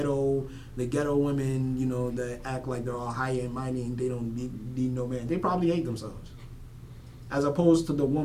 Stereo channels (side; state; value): both; identical; correlation 1.00